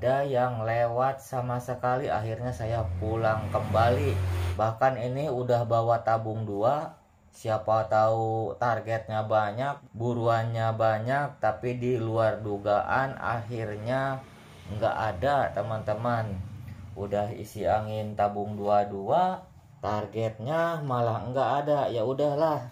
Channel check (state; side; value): identical; both; correlation 1.00